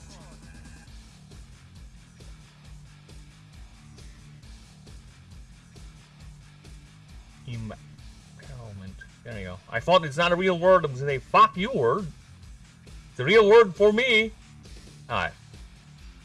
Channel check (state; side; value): identical; both; correlation 1.00